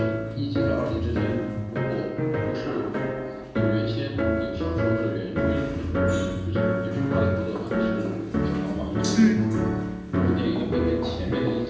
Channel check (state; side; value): identical; both; correlation 1.00